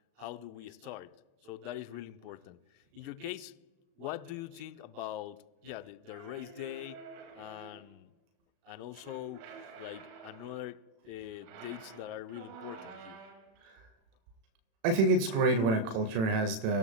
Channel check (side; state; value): left; late; 36 ms